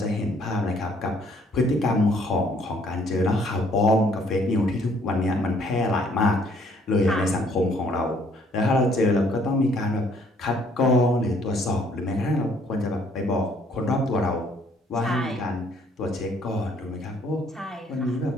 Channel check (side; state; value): both; normal; correlation 0.63